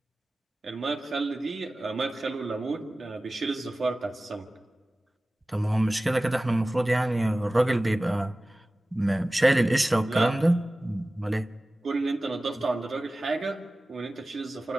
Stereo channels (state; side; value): normal; both; correlation 0.97